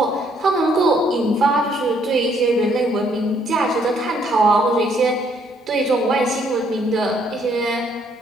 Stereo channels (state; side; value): normal; both; correlation 0.68